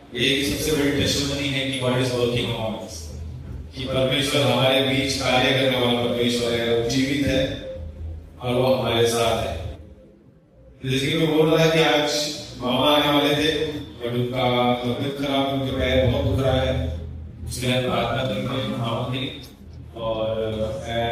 ये सबसे बड़ी टेस्टिमनी है कि God is working on us, कि परमेश्वर हमारे बीच कार्य करने वाला परमेश्वर है, वो जीवित है और वो हमारे साथ है। जैसे कि मैं बोल रहा है कि आज मामा आने वाले थे और उनका तबीयत खराब, उनके पैर बहुत दुख रहा है, इसलिए हम प्रार्थना करते हैं मामा की। और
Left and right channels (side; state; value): both; identical; correlation 1.00